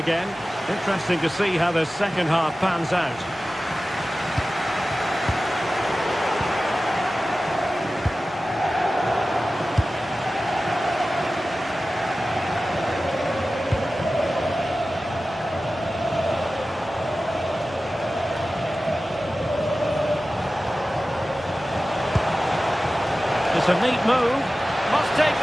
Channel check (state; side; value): normal; both; correlation 0.95